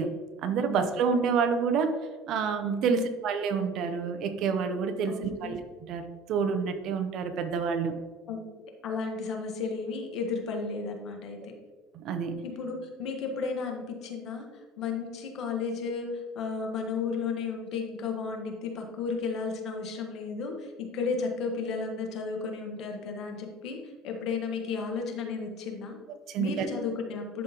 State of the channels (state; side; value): normal; both; correlation 0.40